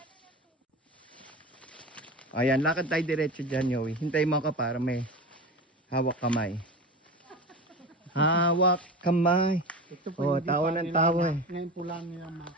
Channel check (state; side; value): normal; both; correlation 0.29